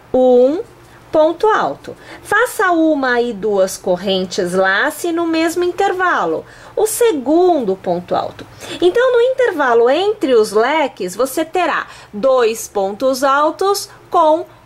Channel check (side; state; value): both; identical; correlation 1.00